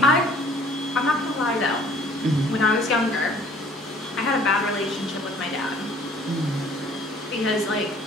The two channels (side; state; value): both; normal; correlation 0.54